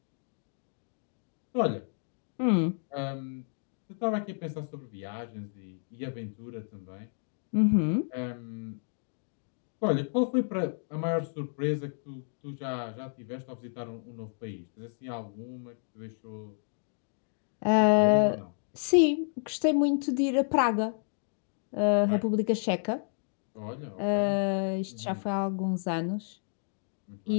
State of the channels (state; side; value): silent; right; digital silence